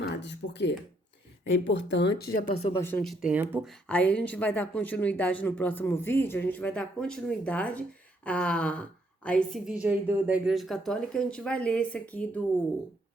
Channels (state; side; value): normal; both; correlation 0.72